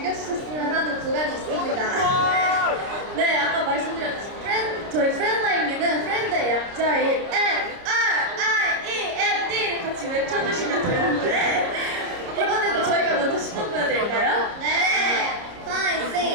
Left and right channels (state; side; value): late; left; 29 ms